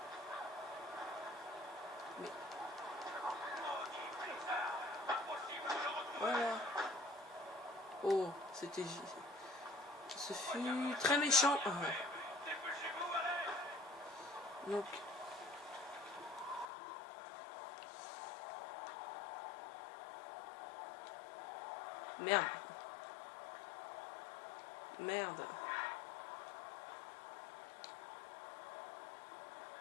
Mais... Voilà. Oh, c'était... Ce fut très méchant. Ah. Donc... Merde. Merde.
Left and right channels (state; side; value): drops out; right; at 16.7 s